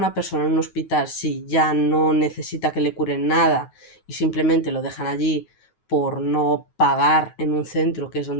persona en un hospital si ya no necesita que le curen nada y simplemente lo dejan allí por no pagar en un centro que es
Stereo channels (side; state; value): right; late; 9.3 ms